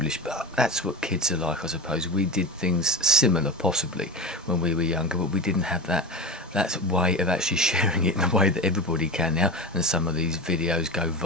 But that's what kids are like, I suppose. We did things similar, possibly, when we were younger, but we didn't have that way of actually sharing it in the way that everybody can now. And some of these videos go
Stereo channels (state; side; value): normal; both; correlation 0.25